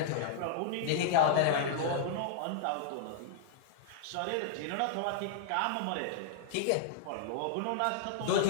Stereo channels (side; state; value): both; different; correlation -0.01